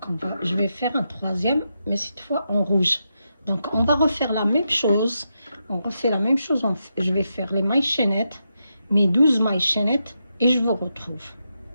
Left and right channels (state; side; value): inverted; both; correlation -0.85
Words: je vais faire un troisième, mais cette fois en rouge. Donc on va refaire la même chose. On refait la même chose. Je vais faire les mailles chaînettes, mes 12 mailles chaînettes, et je vous retrouve.